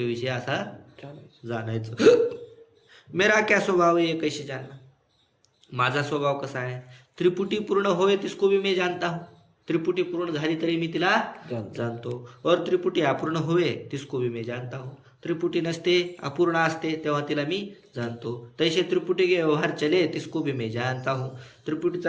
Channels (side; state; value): both; identical; correlation 1.00